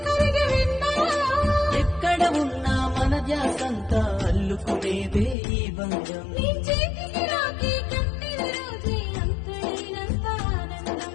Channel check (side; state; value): right; drops out; at 5.4 s